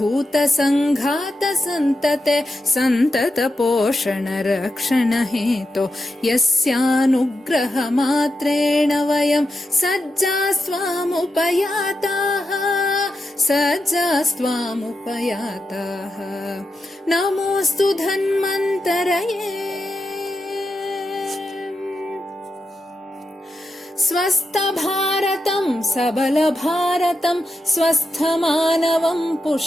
सन्तते सन्तत पोषण रक्षण हेतो यस्यानुग्रहमात्रेण वयं सज्जास्त्वामुपयाताः नमोऽस्तु धन्वन्तरये स्वस्थभारतं सबलभारतं स्वस्थमानवं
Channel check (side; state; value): both; normal; correlation 0.87